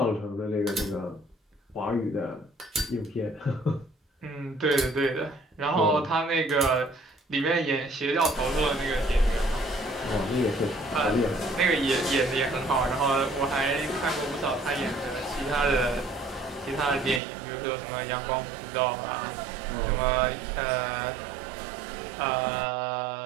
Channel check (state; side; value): drops out; left; at 17.2 s